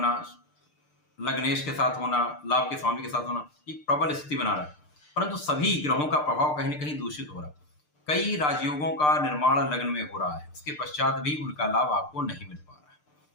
लग्नेश के साथ होना, लाभ के स्वामी के साथ होना एक प्रबल स्थिति बना रहा है, परंतु सभी ग्रहों का प्रभाव कहीं न कहीं दूषित हो रहा है। कई राजयोगों का निर्माण लग्न में हो रहा है, उसके पश्चात भी उनका लाभ आपको नहीं मिल पा रहा है।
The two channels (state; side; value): late; right; 6.7 ms